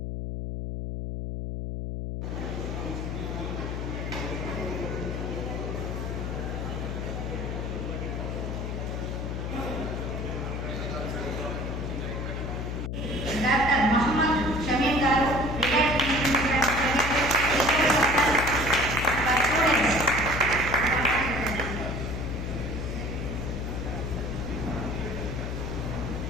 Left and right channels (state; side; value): noise; left; hum, 3 dB below the sound